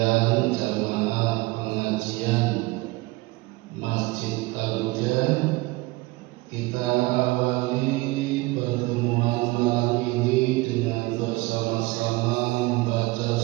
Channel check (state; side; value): quieter; left; 21.8 dB